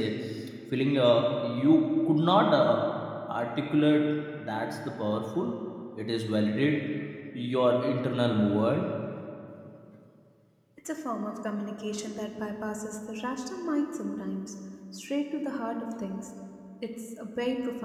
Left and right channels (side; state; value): both; identical; correlation 1.00